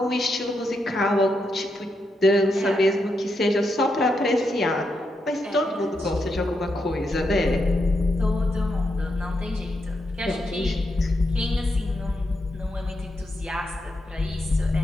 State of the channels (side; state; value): both; normal; correlation 0.83